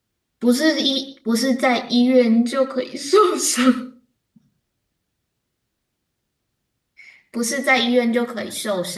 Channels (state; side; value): identical; both; correlation 1.00